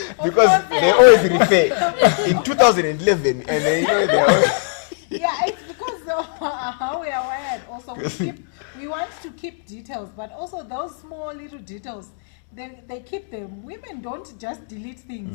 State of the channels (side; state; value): right; silent; digital silence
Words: because course, they yeah. always refer in 2011, and they know they always. Yeah, it's because of how we are wired. Also, we want to keep details, but also those small little details, they keep them. Women don't just delete